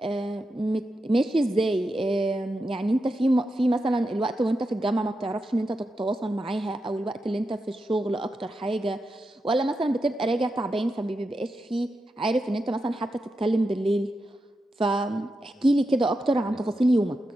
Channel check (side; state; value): both; normal; correlation 0.88